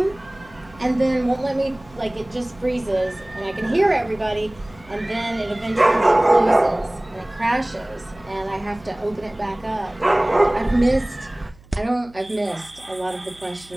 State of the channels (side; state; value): right; noise; hum, 25 dB below the sound